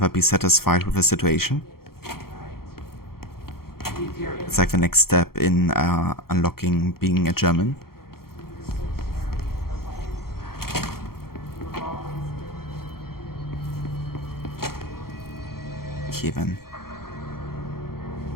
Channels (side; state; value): right; late; 0.94 ms